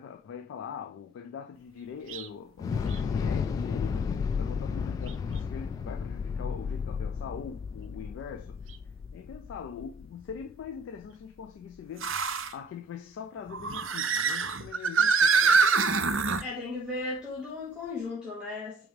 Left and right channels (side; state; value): both; normal; correlation 0.58